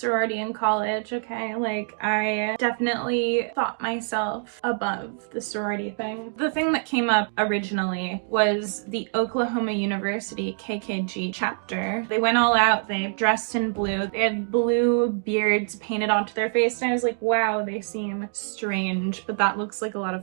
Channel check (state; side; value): silent; left; 62 dB below the other